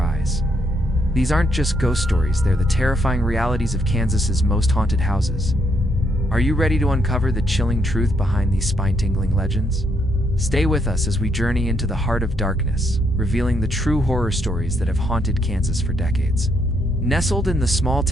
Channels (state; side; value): normal; both; correlation 0.75